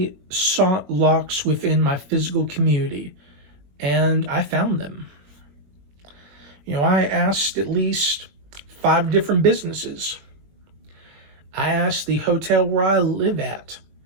sought locks within my physical community, and I found them. You know, I asked at least 5 different businesses. I asked the hotel where I live at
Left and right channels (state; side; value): late; left; 21 ms